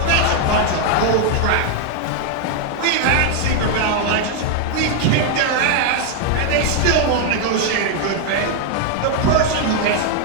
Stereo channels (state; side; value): different; both; correlation 0.00